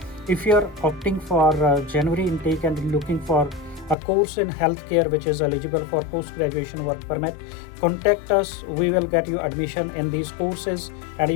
If you are opting for January intake and looking for a course in healthcare which is eligible for post-graduation work permit, contact us. We will get you admission in these courses and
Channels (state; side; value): drops out; right; at 4.0 s